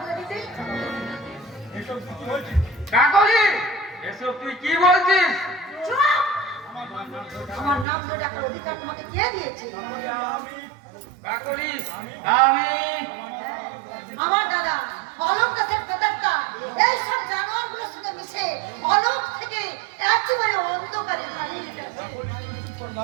দিতে। কাকলি এসব তুই কি বলছিস? চুপ! আমার নাম ধরে ডাকার অধিকার তোমাকে কে দিয়েছে? কাকলি আমি আমার দাদা অলোক দাসের প্রেতাত্মা এই সব জানোয়ারগুলোর সঙ্গে মিশে অলোক থেকে একেবারে অন্ধকারে হারিয়ে গেছে।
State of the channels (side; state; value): left; drops out; at 7.9 s